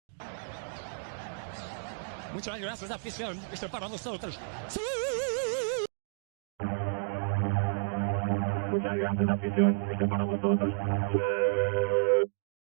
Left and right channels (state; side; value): silent; left; digital silence